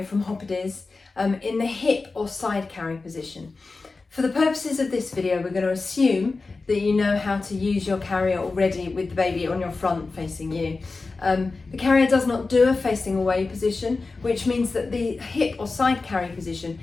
from Hoppediz in the hip or side carry position. For the purposes of this video, we're going to assume that you know how to use your carrier already with the baby on your front facing you. The carrier does not do a facing away position, which means that the hip or side carry position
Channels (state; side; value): quieter; right; 3.9 dB